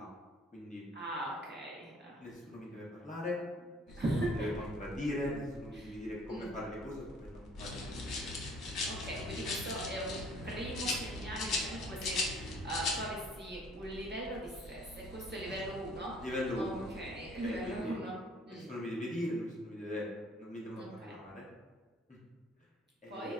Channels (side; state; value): both; normal; correlation 0.56